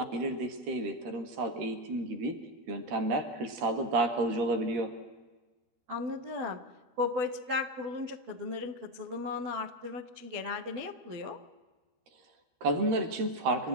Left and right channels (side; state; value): left; late; 13 ms